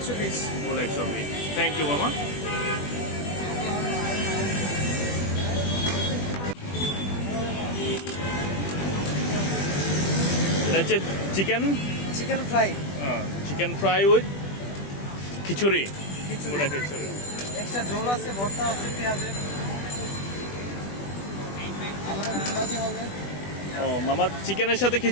Full 120। Thank you মামা। এটা হচ্ছে chicken fry. Chicken fry with খিচুড়ি। খিচুড়ি। ওটা খিচুড়ি। এক্সট্রা ঝোল আছে, ভর্তা আছে পেঁয়াজের। ও মামা, চিকেনের সাথে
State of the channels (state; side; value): late; right; 20 ms